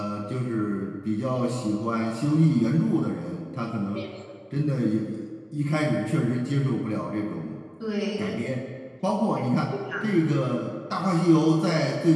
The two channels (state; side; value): identical; both; correlation 1.00